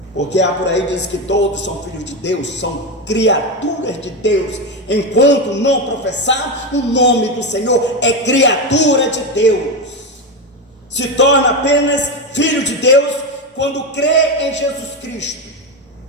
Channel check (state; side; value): normal; both; correlation 0.13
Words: Porque há por aí diz que todos são filhos de Deus, são criaturas de Deus, enquanto não professar o nome do Senhor, é criatura de Deus. Se torna apenas filho de Deus quando crê em Jesus Cristo,